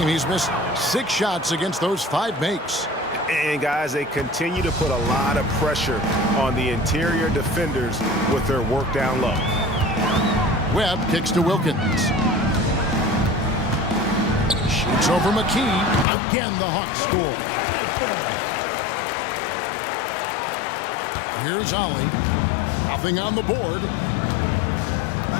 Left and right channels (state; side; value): drops out; right; at 16.1 s